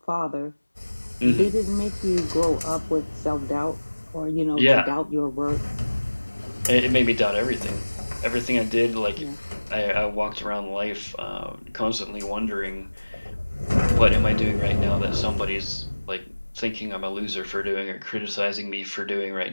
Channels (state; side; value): inverted; both; correlation -1.00